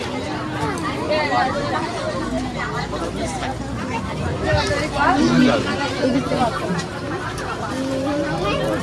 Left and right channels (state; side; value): identical; both; correlation 1.00